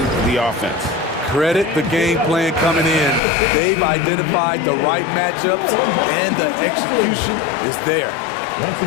the offense. Credit the game plan coming in. They've identified the right matchups, and the execution is there.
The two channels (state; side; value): drops out; right; at 3.2 s